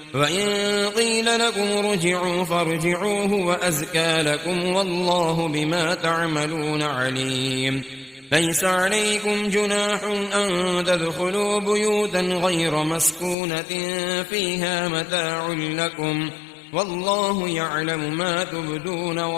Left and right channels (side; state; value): right; drops out; at 13.4 s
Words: وإن قيل لكم ارجعوا فارجعوه وأزكى لكم والله بما تعملون عليم. ليس عليكم جناح أن تدخلوا بيوتا غير مسكونة فيها متاع لكم والله يعلم ما تبدون